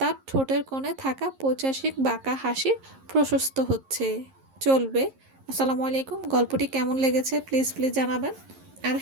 ঠোঁটের কোণে থাকা পৈশাচিক বাঁকা হাসি প্রশস্ত হচ্ছে। চলবে। আসসালামু আলাইকুম। গল্পটি কেমন লেগেছে প্লিজ জানাবেন। আর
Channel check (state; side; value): late; left; 11 ms